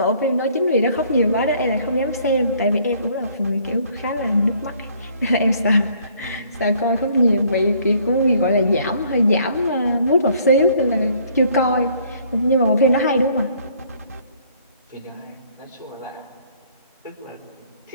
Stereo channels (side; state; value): both; inverted; correlation -0.61